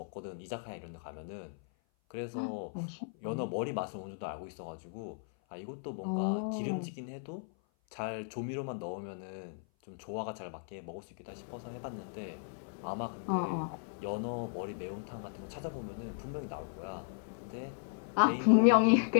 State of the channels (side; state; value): right; silent; 54 dB below the other